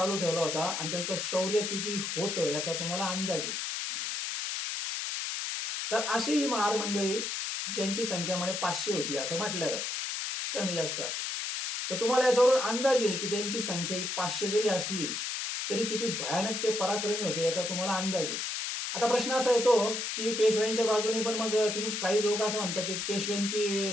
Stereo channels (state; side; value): noise; left; hiss, 3 dB below the sound